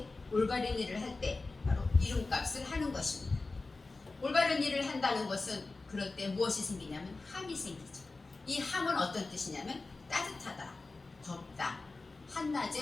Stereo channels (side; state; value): right; quieter; 3.6 dB